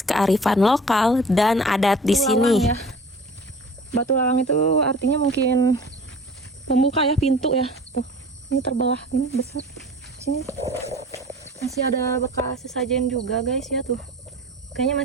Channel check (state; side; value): normal; both; correlation 0.43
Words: kearifan lokal dan adat di sini. Ya. Batu lawang itu artinya mungkin pembuka ya, pintu ya. Tuh, ini terbelah, ini besar. Sini masih ada bekas sesajen juga guys ya tuh. Kayaknya